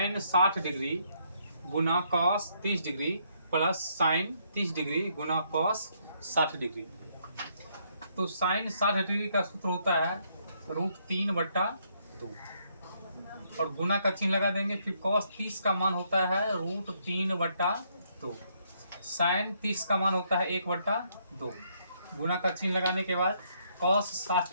60 डिग्री गुना cos 30 degree plus sine 30 degree गुना कॉस 60 डिग्री। तो साइन 60 डिग्री का सूत्र होता है √3/2 और गुना का चिन्ह लगा देंगे। फिर कॉस 30 का मान होता है √3/2। साइन 30 का मान होता है 1/2। गुना का चिन्ह लगाने के बाद कॉस 60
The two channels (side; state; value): both; inverted; correlation -0.72